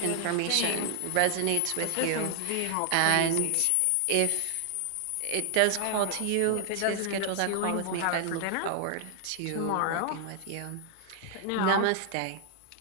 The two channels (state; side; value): different; both; correlation 0.00